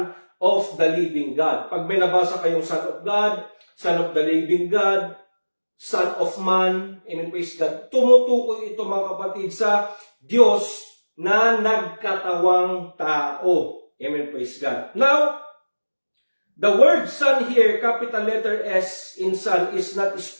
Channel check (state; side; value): inverted; both; correlation -1.00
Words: of the living God. Pag may nabasa kayong Son of God, Son of the living God, Son of Man, amen, praise God, tumutukoy ito, mga kapatid, sa Diyos na nagkatawang tao. Amen, praise God. Now, the word Son here, capital letter S in Son, is not